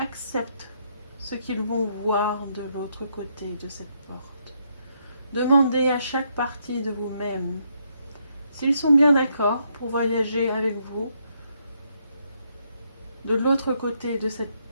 ce qu'ils vont voir de l'autre côté de cette porte. Demandez à chaque partie de vous-même s'ils sont bien d'accord pour voyager avec vous de l'autre côté de cette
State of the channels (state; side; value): inverted; both; correlation -0.75